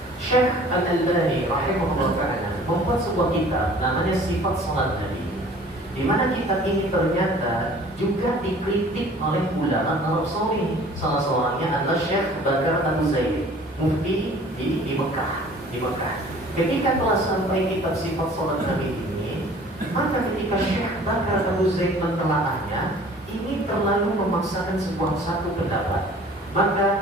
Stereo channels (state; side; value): normal; both; correlation 0.49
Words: Syekh Al-Albani rahimahullah ta'ala membuat sebuah kitab namanya Sifat Salat Nabi, di mana kitab ini ternyata juga dikritik oleh ulama Arab Saudi. Salah seorangnya adalah Syekh Bakar Abu Zaid, mufti di Mekah. Ketika telah sampai kitab Sifat Salat Nabi ini, maka ketika Syekh Bakar Abu Zaid mentelaahnya, ini terlalu memaksakan sebuah satu pendapat.